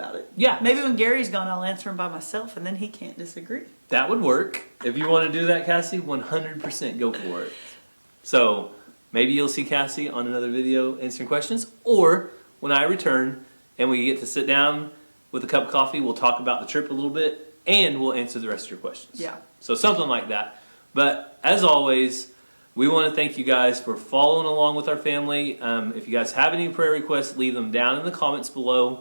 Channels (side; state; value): both; inverted; correlation -1.00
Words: it. Yeah. Maybe when Gary's gone, I'll answer him by myself, and then he can't disagree. That would work. If you want to do that, Cassie, 100% go for it. So maybe you'll see Cassie on another video answering questions, or when I return and we get to sit down with a cup of coffee, we'll talk about the trip a little bit and we'll answer the rest of your questions. Yeah. So something like that. But as always, we want to thank you guys for following along with our family. If you guys have any prayer requests, leave them down in the comments